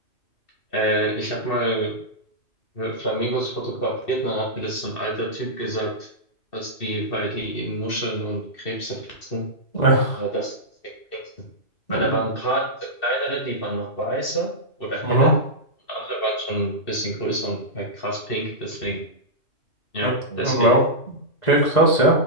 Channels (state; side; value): late; right; 2.6 ms